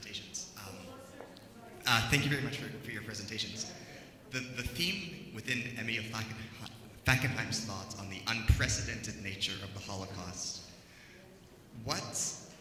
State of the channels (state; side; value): identical; both; correlation 1.00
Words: Thank you very much for your presentations. The theme within Emil Fackenheim's thoughts on the unprecedented nature of the Holocaust, what